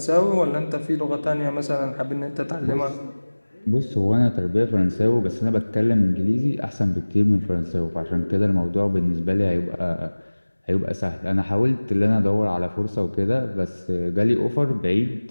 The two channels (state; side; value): inverted; both; correlation -1.00